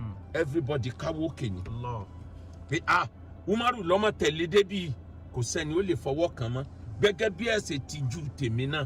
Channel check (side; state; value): both; identical; correlation 1.00